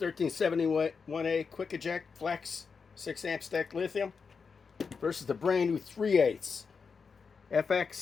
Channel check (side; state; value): right; quieter; 5.4 dB